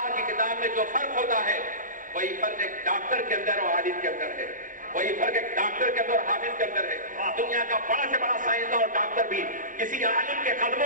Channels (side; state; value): left; late; 0.39 ms